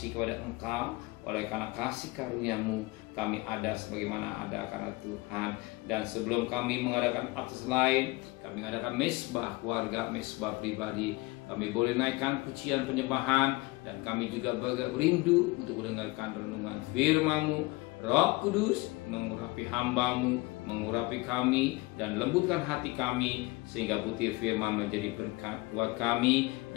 kepada Engkau. Oleh karena kasih karunia-Mu kami ada sebagaimana ada karena Tuhan. Dan sebelum kami mengadakan aktivitas lain, kami mengadakan mesbah keluarga, mesbah pribadi, kami boleh naikkan pujian penyembahan, dan kami juga berindu untuk mendengarkan renungan firman-Mu. Roh Kudus mengurapi hamba-Mu, mengurapi kami, dan lembutkan hati kami, sehingga butir firman menjadi berkat buat kami,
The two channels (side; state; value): right; quieter; 23.0 dB